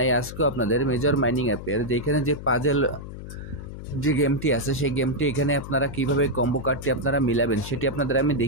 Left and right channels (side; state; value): left; noise; hum, 11 dB below the sound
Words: আজকেও আপনাদের মেজর মাইনিং অ্যাপের যেখানে যে পাজেল যে গেমটি আছে সেই গেমটি এখানে আপনারা কিভাবে কম্বো কার্ডটি আপনারা মিলাবেন সেটি আপনাদের আমি